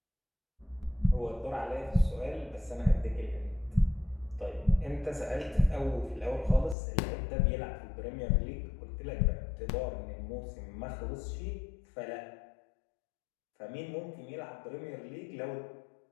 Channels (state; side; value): drops out; right; at 6.8 s